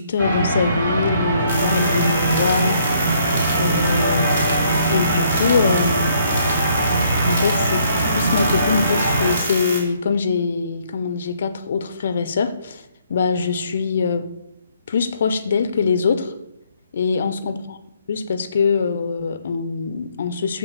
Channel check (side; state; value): both; inverted; correlation -0.67